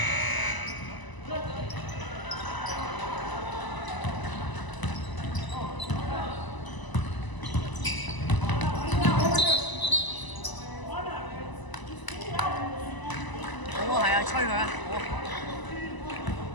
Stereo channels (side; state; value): right; late; 1.0 ms